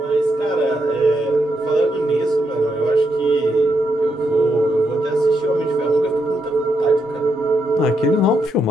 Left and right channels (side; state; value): both; normal; correlation 0.80